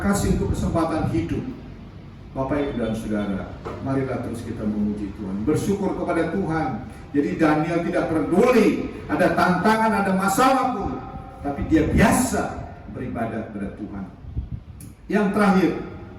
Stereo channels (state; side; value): identical; both; correlation 1.00